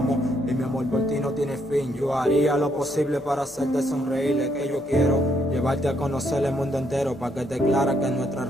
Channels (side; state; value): both; normal; correlation 0.74